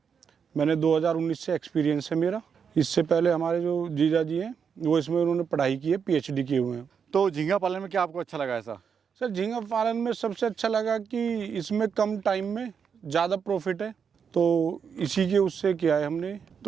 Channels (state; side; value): quieter; left; 6.8 dB